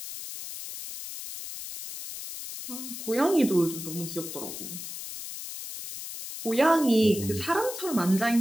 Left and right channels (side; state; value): left; noise; hiss, 9 dB below the sound